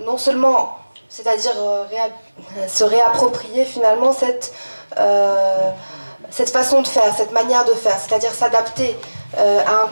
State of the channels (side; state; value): both; inverted; correlation -1.00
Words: non seulement, c'est-à-dire se réapproprier finalement cette façon de faire, cette manière de faire, c'est-à-dire s'adapter à un